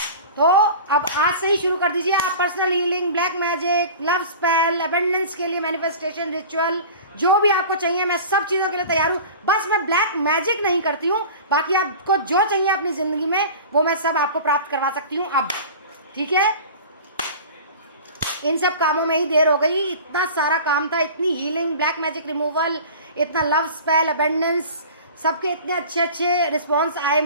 तो अब आज से ही शुरू कर दीजिए आप personal healing, black magic, love spell, abundance के लिए मैनिफेस्टेशन रिचुअल, जो भी आपको चाहिए मैं सब चीज़ों के लिए तैयार हूँ। बस मैं ब्लैक मैजिक नहीं करती हूँ, बाकी आपको जो चाहिए अपनी ज़िंदगी में वो मैं सब आपको प्राप्त करवा सकती हूँ अब, ठीक है। इन सब कामों में ही देर हो गई, इतना सारा काम था, इतनी हीलिंग, ब्लैक मैजिक रिमूवल, इतना लव स्पेल, अबंडेंस, सबके इतने अच्छे अच्छे रिस्पॉन्स आए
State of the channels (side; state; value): both; inverted; correlation -0.38